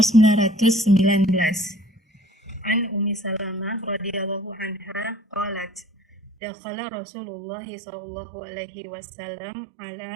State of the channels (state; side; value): drops out; left; at 6.4 s